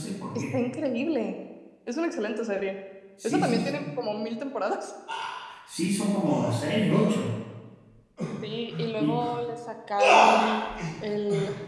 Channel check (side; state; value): both; identical; correlation 1.00